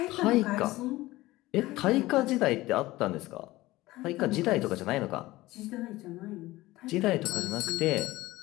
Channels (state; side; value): quieter; right; 18.3 dB